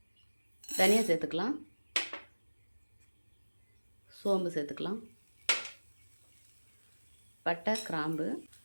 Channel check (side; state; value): both; inverted; correlation -1.00